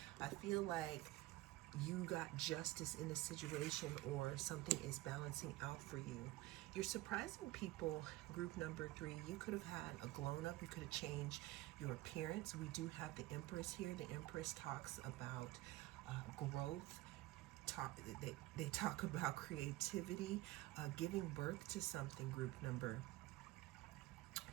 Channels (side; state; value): left; quieter; 18.0 dB